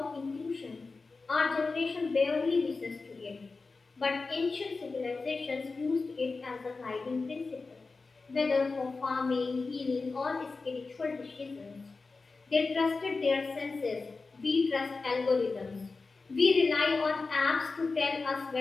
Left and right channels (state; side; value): quieter; right; 4.0 dB